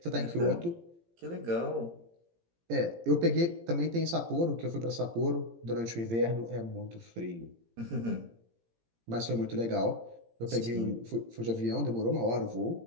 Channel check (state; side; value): late; left; 17 ms